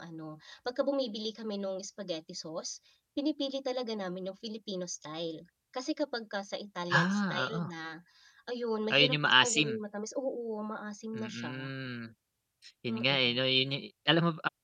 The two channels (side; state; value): both; identical; correlation 1.00